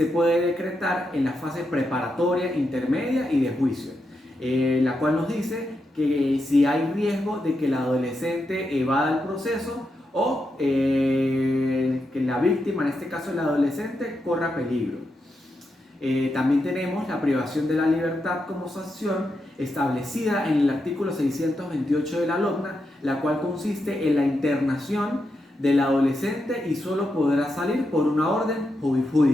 puede decretar en la fase preparatoria, intermedia y de juicio, la cual nos dice que si hay riesgo de que el adolescente evada el proceso o que la víctima, en este caso el adolescente, corra peligro. También tenemos la privación de la libertad como sanción establecida en el artículo 628 de la LOGNA, la cual consiste en la internación del adolescente y solo podrá salir por una orden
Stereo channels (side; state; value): both; normal; correlation 0.85